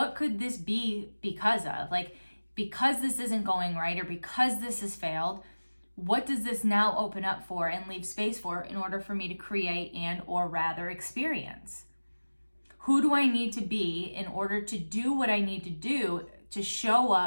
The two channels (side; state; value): both; inverted; correlation -1.00